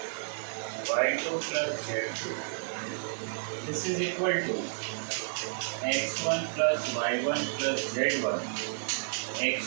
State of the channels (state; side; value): silent; left; 57 dB below the other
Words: y2 plus z2. This is equal to x1 plus y1 plus z1